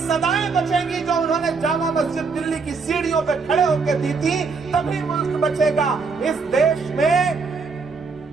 बचेंगी जो उन्होंने जामा मस्जिद दिल्ली की सीढ़ियों पे खड़े होकर दी थी, तभी मुल्क बचेगा। इस देश में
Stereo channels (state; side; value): quieter; left; 4.7 dB